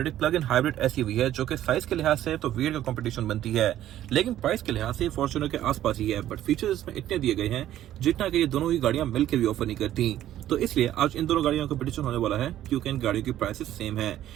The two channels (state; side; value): quieter; left; 12.5 dB